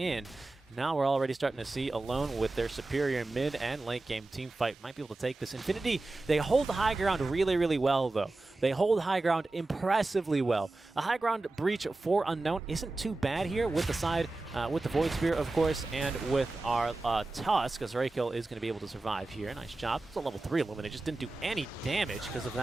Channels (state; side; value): quieter; left; 3.1 dB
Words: Now we're already starting to see alone with their superior mid and late game team fight might be able to take this. Infinity, they hold the high ground really, really well, though. They hold high ground impressively well. The high ground breach for Unknown isn't too bad here with the side, with the Void Spear, of course, and with our Tusk, as Rakill is going to be able to survive here. Nice job. It's a level 3 Illuminate. Just didn't do any damage because of